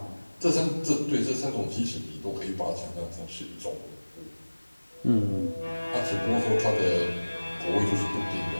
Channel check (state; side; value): inverted; both; correlation -1.00